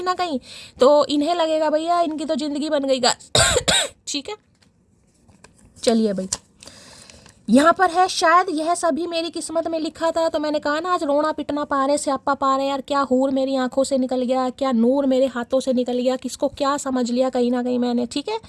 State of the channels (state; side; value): identical; both; correlation 1.00